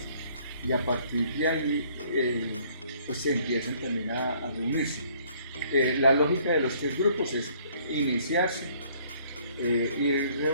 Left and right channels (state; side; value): inverted; both; correlation -0.61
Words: y a partir de ahí pues se empiezan también a reunirse. La lógica de los tres grupos es iniciarse y